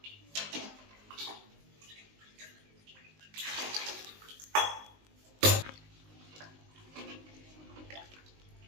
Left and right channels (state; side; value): late; left; 19 ms